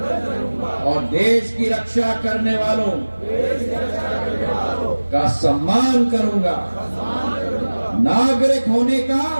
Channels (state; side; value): inverted; both; correlation -1.00